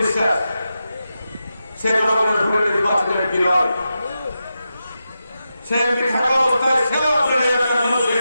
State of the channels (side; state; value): both; inverted; correlation -0.89